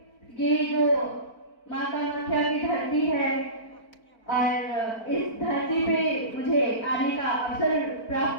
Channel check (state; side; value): late; right; 4.4 ms